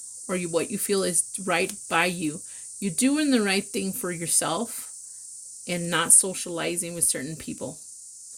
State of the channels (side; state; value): both; identical; correlation 1.00